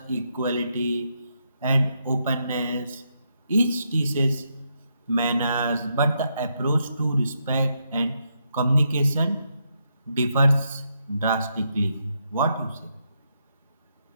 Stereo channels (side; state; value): both; inverted; correlation -0.80